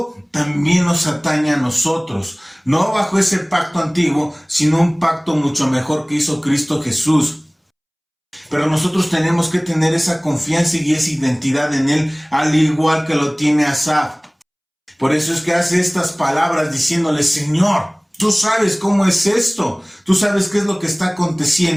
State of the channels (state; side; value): identical; both; correlation 1.00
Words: también nos atañe a nosotros, no bajo ese pacto antiguo, sino un pacto mucho mejor que hizo Cristo Jesús. Pero nosotros tenemos que tener esa confianza y esa identidad en Él, al igual que lo tiene Asaf. Por eso es que hace estas palabras diciéndole: Señor, tú sabes cómo es esto, tú sabes qué es lo que está